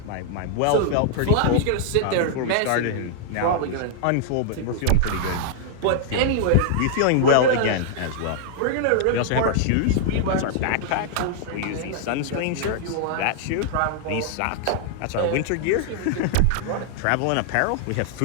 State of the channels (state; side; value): different; both; correlation -0.01